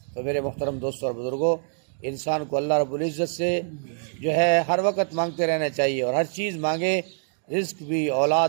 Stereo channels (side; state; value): left; silent; digital silence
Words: تو میرے محترم دوستوں اور بزرگوں، انسان کو اللہ رب العزت سے جو ہے ہر وقت مانگتے رہنا چاہیے، اور ہر چیز مانگے، رزق بھی،